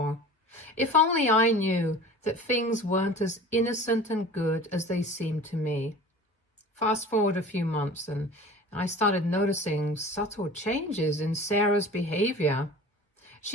If only I knew that things weren't as innocent and good as they seemed to me. Fast forward a few months and I started noticing subtle changes in Sarah's behavior.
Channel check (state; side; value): normal; both; correlation 0.40